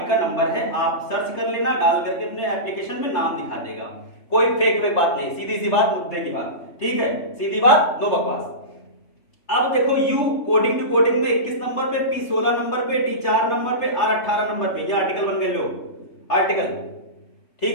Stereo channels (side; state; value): right; late; 3.3 ms